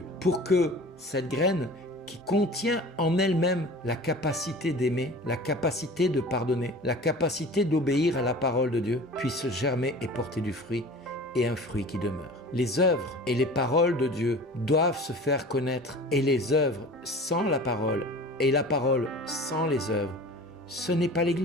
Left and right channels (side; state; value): both; normal; correlation 0.40